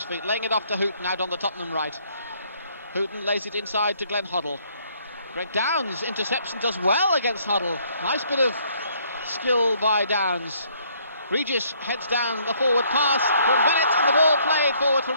feet, laying it off to Houghton out on the Tottenham right. Houghton lays it inside to Glenn Hoddle. Greg Downs intercepts and does well against Hoddle. Nice bit of skill by Downs. Regis heads down the forward pass from Bennett, and the ball played forward for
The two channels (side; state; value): both; inverted; correlation -0.66